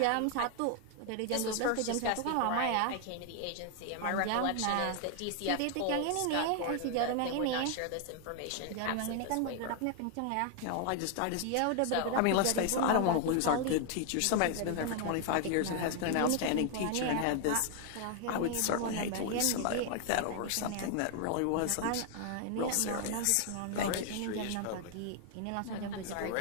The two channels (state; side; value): different; both; correlation 0.00